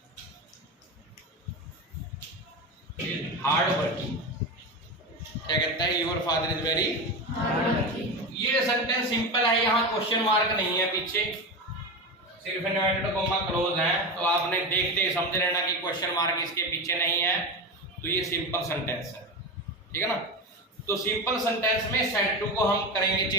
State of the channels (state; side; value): normal; both; correlation 0.21